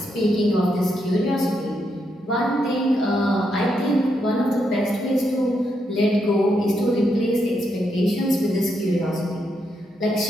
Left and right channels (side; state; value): both; normal; correlation 0.80